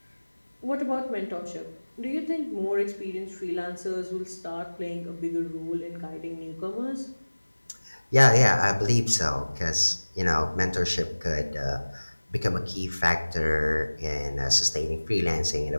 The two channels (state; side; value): inverted; both; correlation -1.00